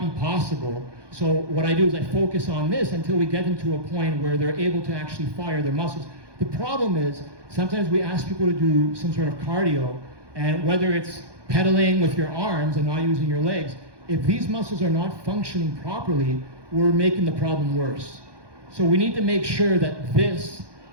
be possible. So what I do is I focus on this until we get them to a point where they're able to actually fire their muscles. The problem is, sometimes we ask people to do some sort of cardio, and whether it's pedaling with your arms and not using your legs, if these muscles are not functioning properly, we're making the problem worse. So we need to make sure that these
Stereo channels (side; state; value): left; late; 1.2 ms